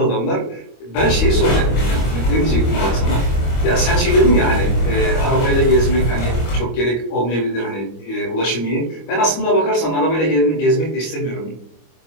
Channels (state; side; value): late; right; 25 ms